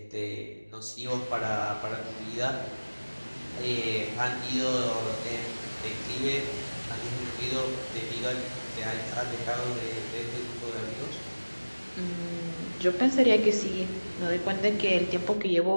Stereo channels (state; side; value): inverted; both; correlation -1.00